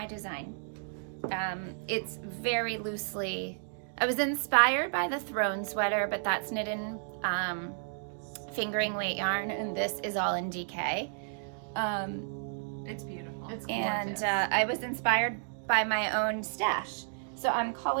design. It's very loosely. I was inspired by the throne sweater, but that's knit in fingering weight yarn, and this is all in DK. It's beautiful. It's And gorgeous. I was inspired by my own stash. So I'm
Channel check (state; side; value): silent; left; digital silence